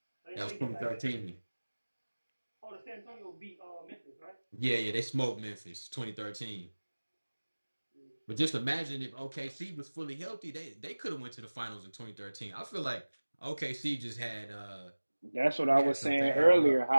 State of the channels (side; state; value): both; inverted; correlation -1.00